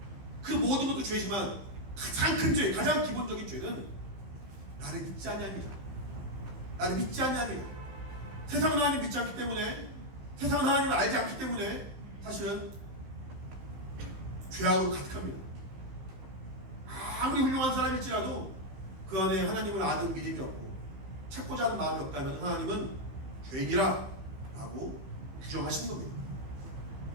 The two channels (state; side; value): late; left; 15 ms